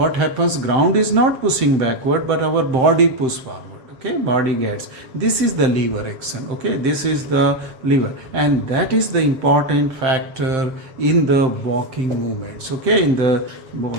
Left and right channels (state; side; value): late; left; 7.7 ms